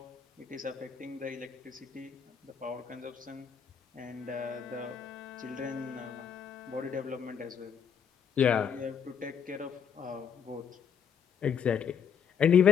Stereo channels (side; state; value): right; quieter; 7.5 dB